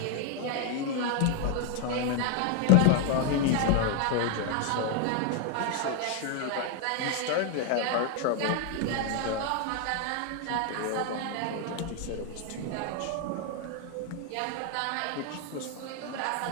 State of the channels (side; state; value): both; different; correlation 0.00